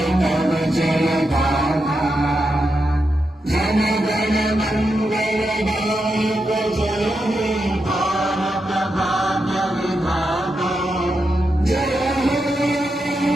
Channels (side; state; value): both; normal; correlation 0.86